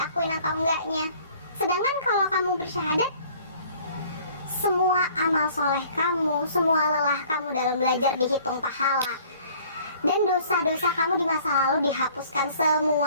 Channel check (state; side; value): inverted; both; correlation -0.54